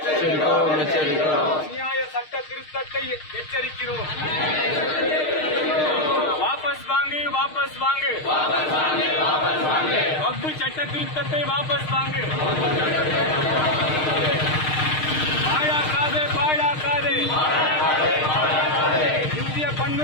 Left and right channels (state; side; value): late; right; 6.5 ms